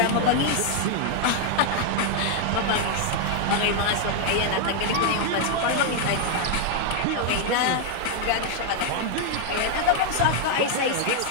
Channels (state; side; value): different; both; correlation 0.00